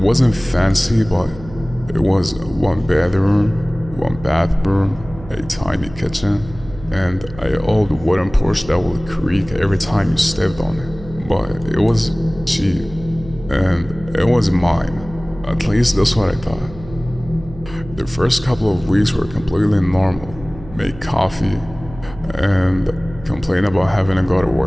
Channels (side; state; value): right; noise; hum, 16 dB below the sound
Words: fancy, but it was 1 bedroom, 1 bathroom, a tiny kitchen, and an old wooden porch that would creak every time you stepped on it. But it was cheap, and it was mine. At least that's what I thought. The first couple of weeks were completely normal. Make coffee, and complain about having to go to